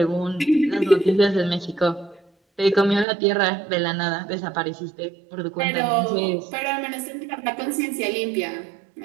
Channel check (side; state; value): left; drops out; at 3.1 s